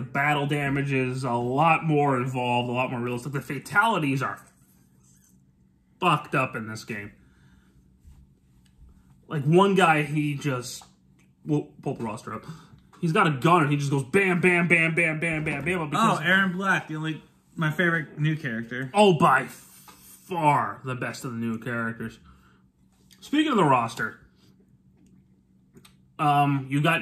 battle damage is a lot more involved, a lot more realistic. The fatalities are fucked up in this game. Like, one guy, he just... We'll pull the roster up. He's got a gun, and he just goes bam, bam, bam, bam, bam, bam, bam. Aaron Black, my favorite new character. Oh, by far the best of the new characters. Speaking of the roster, you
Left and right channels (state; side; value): identical; both; correlation 1.00